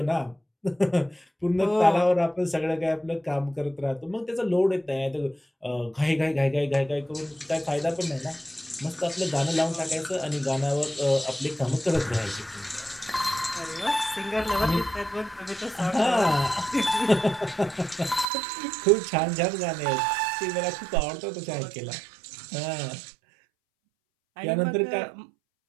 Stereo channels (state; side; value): drops out; left; at 18.2 s